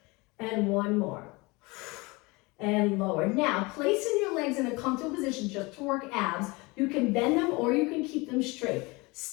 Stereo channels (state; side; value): quieter; right; 25.2 dB